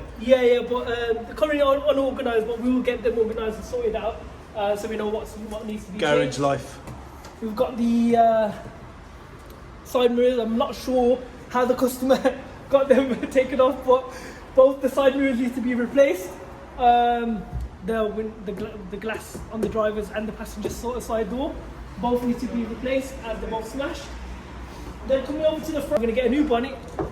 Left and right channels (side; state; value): both; identical; correlation 1.00